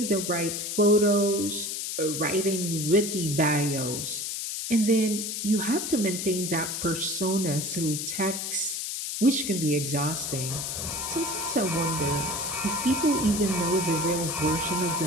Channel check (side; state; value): left; noise; hiss, 4 dB below the sound